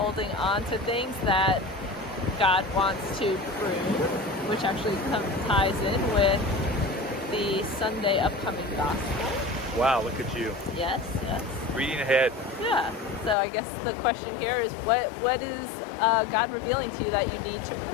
on to things that God wants to prune, which actually ties in with the Sunday upcoming gospel. Wow, look at you. Yes. Reading ahead. Yeah. So I guess the question here is what is God revealing to you that you need to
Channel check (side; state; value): right; drops out; at 13.4 s